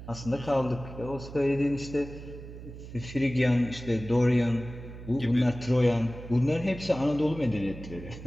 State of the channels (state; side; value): noise; right; hum, 13 dB below the sound